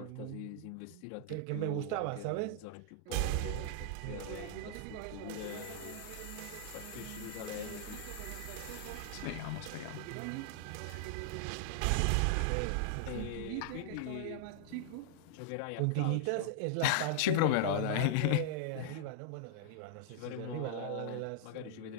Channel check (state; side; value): different; both; correlation -0.01